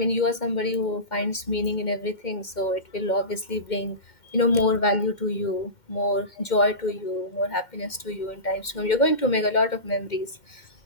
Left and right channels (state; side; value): late; right; 2.1 ms